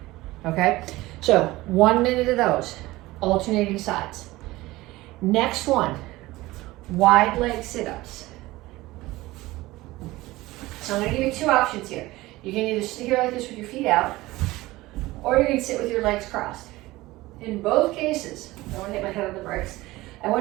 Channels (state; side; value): quieter; left; 18.9 dB